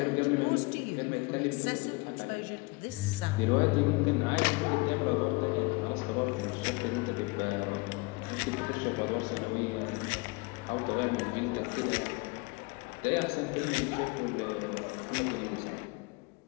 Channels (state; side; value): quieter; right; 26.4 dB